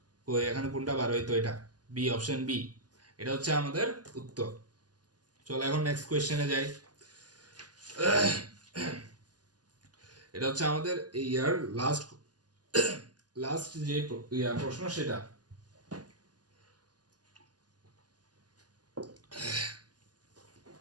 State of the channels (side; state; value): left; late; 0.69 ms